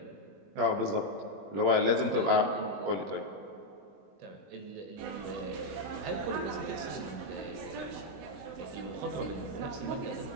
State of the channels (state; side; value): late; left; 21 ms